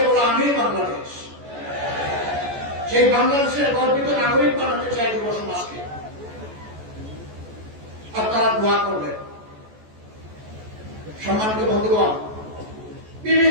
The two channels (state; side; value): late; left; 14 ms